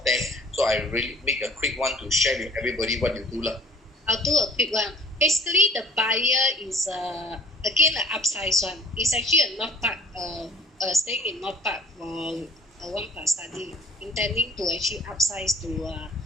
so I really make a quick one to share with everybody what you do. I'll do a quick one. Basically, the buyer is again an upsize one. It's actually a North Park, staying in North Park for a 1+ study, intending to actually upsize to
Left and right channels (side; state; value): both; normal; correlation 0.51